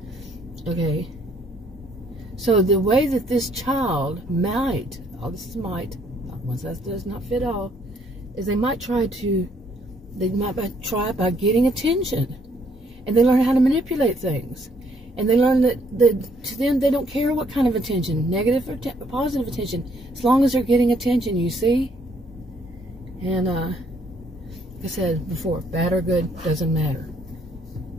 Okay. So the way that this child might, once that does not fit all, is they might try by getting attention. And they learn how to manipulate things. And they learn that to them, they don't care what kind of attention, negative or positive attention, as long as they're getting attention, you see? And, like I said before, bad or good, doesn't matter.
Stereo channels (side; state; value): both; normal; correlation 0.67